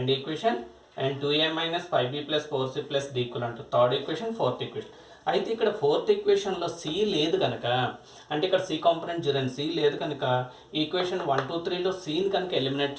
equation. And 2a minus 5b plus 4c plus d equal to third equation, fourth equation. అయితే ఇక్కడ ఫోర్త్ ఈక్వేషన్లో సి లేదు కనుక, అంటే ఇక్కడ సి కాంపోనెంట్ 0 సి లేదు కనుక ఈక్వేషన్ 1 2 3లో సిని కనుక ఎలిమినేట్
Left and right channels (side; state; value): both; identical; correlation 1.00